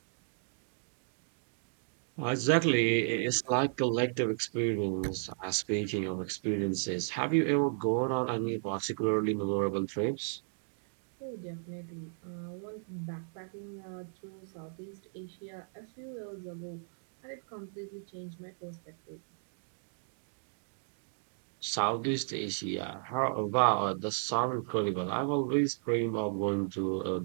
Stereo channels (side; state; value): left; silent; digital silence